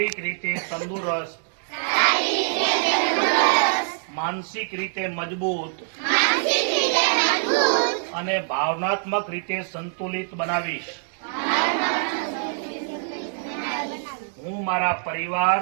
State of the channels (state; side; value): silent; left; digital silence